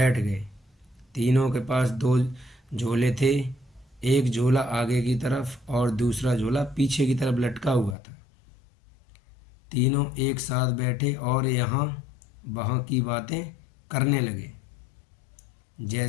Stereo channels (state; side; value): drops out; right; at 8.0 s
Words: गए। तीनों के पास 2 झोले थे। एक झोला आगे की तरफ और दूसरा झोला पीछे की तरफ लटका हुआ था। तीनों एक साथ बैठे और यहाँ वहाँ की बातें करने लगे,